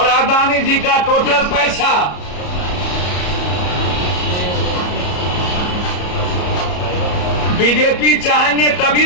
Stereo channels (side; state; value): right; late; 34 ms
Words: अदानी जी का टोटल पैसा, बीजेपी चाहेंगे तभी